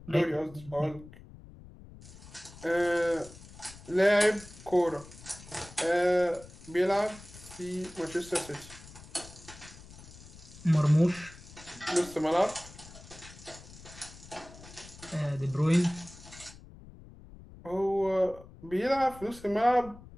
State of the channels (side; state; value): left; noise; rumble, 18 dB below the sound